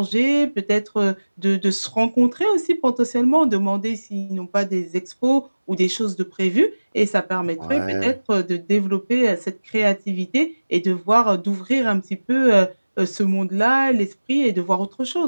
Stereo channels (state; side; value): inverted; both; correlation -1.00